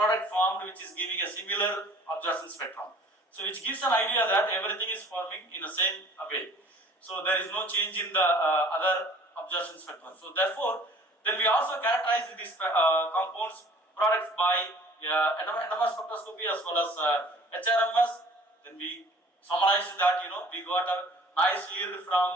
formed which is giving a similar absorption spectrum. So which gives an idea that everything is forming in the same way. So there is no change in the other absorption spectrum. So therefore, then we also characterize these compounds products by NMR spectroscopy as well as HRMS. Then we summarized that we got a nice yield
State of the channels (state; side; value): normal; both; correlation 0.51